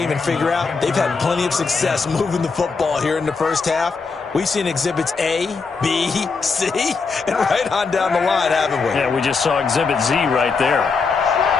and figure out they've had plenty of success moving the football here in the first half. We've seen exhibits A, B, C, and right on down the line, haven't we? Yeah, we just saw exhibit Z right there.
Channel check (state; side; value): quieter; right; 4.7 dB